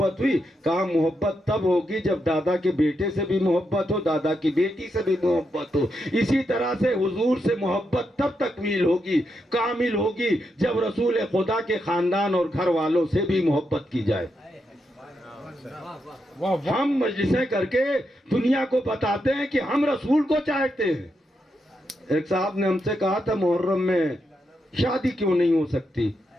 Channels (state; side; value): normal; both; correlation 0.83